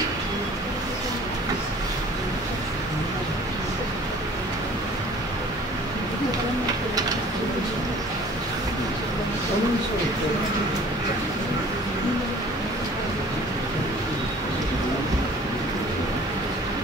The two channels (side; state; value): both; normal; correlation 0.49